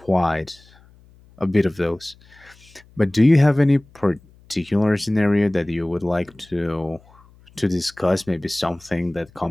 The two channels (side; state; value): left; noise; hum, 28 dB below the sound